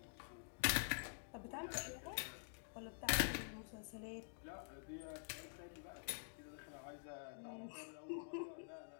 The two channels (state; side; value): silent; right; digital silence